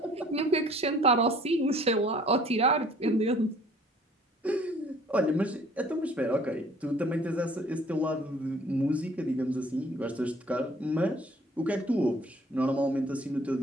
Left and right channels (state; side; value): normal; both; correlation 0.55